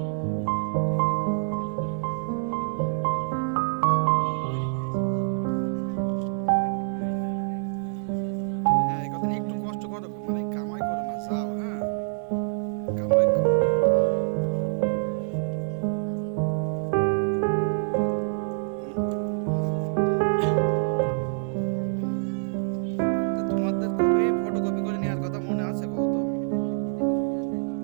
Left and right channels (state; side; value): silent; left; digital silence